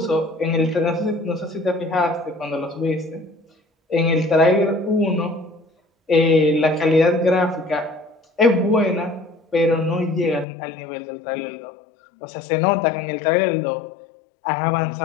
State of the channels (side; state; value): right; drops out; at 10.5 s